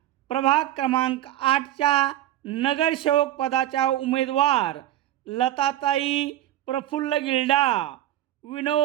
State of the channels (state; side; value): quieter; left; 13.2 dB